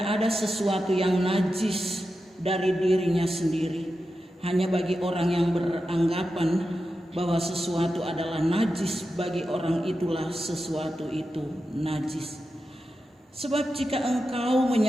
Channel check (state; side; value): normal; both; correlation 0.90